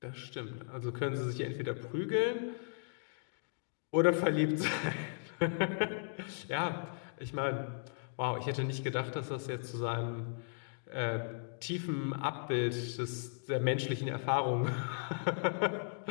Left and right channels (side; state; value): right; silent; digital silence